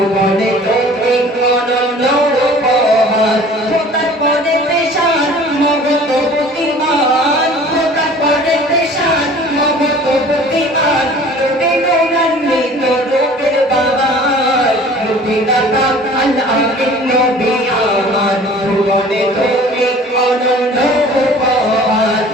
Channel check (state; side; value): normal; both; correlation 0.47